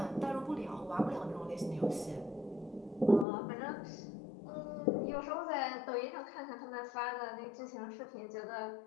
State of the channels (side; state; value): right; drops out; at 3.2 s